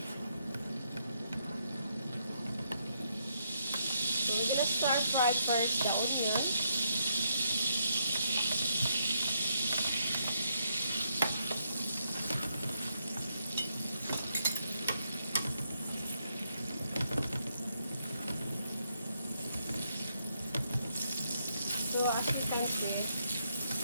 So we're gonna start fry first the onion. So as you can see,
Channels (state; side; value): inverted; both; correlation -0.77